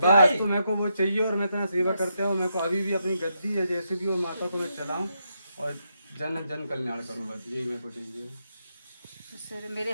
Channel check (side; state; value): both; inverted; correlation -0.82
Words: भाई। तो मेरे को वो चाहिए और मैं इतना सेवा करते हो। मेरे को अभी भी अपनी गद्दी है जैसे भी वो माता को मैं चलाऊं और जन जन कल्याण करूं, बस यही मेरे को चाहिए। सर मेरे